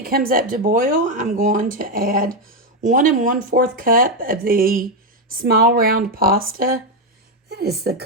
comes up to boil, I'm going to add 1 1/4 cup of the small round pasta. That is the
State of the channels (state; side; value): normal; both; correlation 0.06